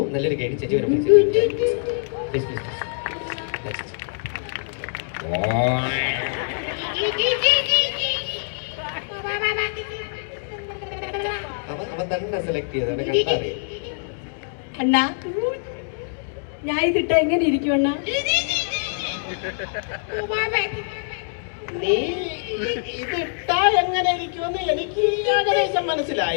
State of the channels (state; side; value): silent; right; digital silence